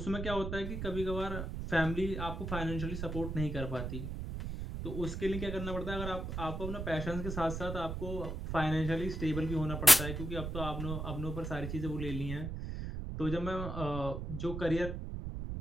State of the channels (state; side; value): noise; right; rumble, 5 dB below the sound